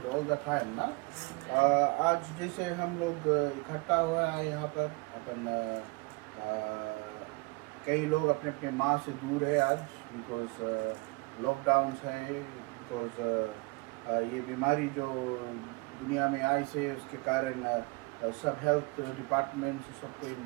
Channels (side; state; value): left; quieter; 27.5 dB